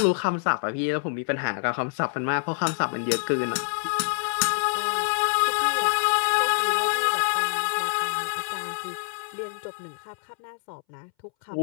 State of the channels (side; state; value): right; silent; 61 dB below the other